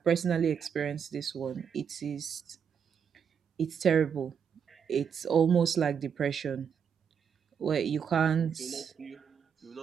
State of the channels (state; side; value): quieter; left; 7.3 dB